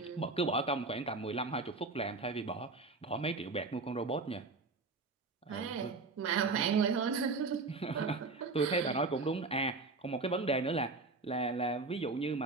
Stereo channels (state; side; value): quieter; left; 3.8 dB